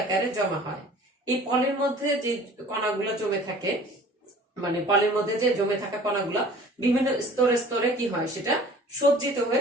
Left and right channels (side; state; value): both; normal; correlation 0.47